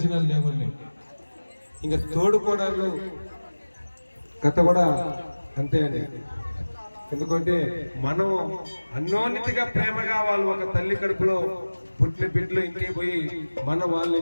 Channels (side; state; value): both; inverted; correlation -1.00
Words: లేవండి. ఇంకా తోడుకోవడాలు కథ కూడా అంతే అండి. ఎందుకంటే మనం అన్యోన్యతగా ప్రేమగా వాళ్ళు ఒక తల్లి కడుపులో పుట్టిన బిడ్డలు ఇంటికి పోయి వాళ్ళని